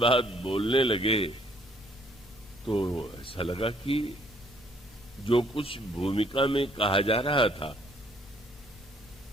बोलने लगे तो ऐसा लगा कि जो कुछ भूमिका में कहा जा रहा था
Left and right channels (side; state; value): both; normal; correlation 0.64